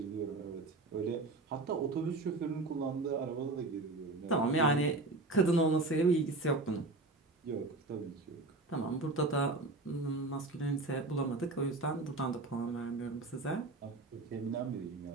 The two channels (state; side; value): quieter; left; 3.1 dB